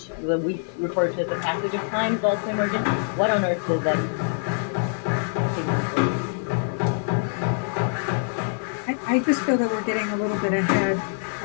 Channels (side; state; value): right; silent; digital silence